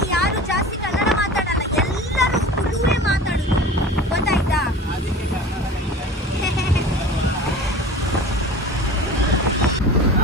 ಯಾರು ಜಾಸ್ತಿ ಕನ್ನಡ ಮಾತಾಡಲ್ಲ, ಎಲ್ಲರೂ ತುಳುವೇ ಮಾತಾಡುದು. ಗೊತ್ತಾಯ್ತಾ?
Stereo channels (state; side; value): normal; both; correlation 0.37